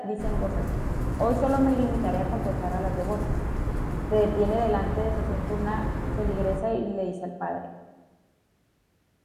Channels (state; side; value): identical; both; correlation 1.00